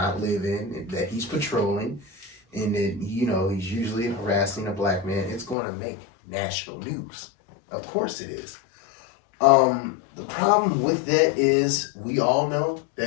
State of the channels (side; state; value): right; drops out; at 5.6 s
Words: live in, that he's patrolling, and that, you know, he's usually harassing a Black man, it's going to make national news. Of course it is. The problem with that is we all know